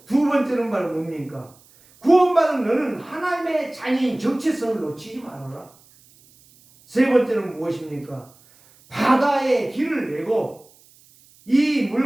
두 번째는 바로 뭡니까? 구원받은 너는 하나님의 자녀인 정체성을 놓치지 말아라. 세 번째는 무엇입니까? 바다에 길을 내고 이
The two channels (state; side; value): noise; right; hiss, 28 dB below the sound